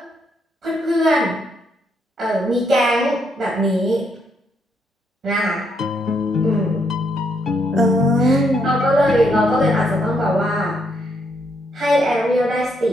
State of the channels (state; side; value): normal; both; correlation 0.75